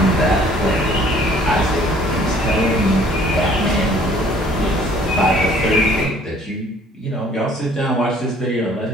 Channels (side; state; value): both; normal; correlation 0.56